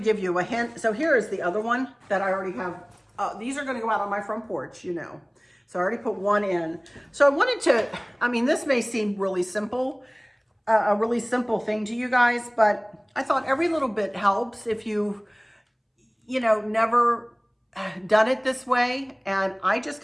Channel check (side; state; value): both; identical; correlation 1.00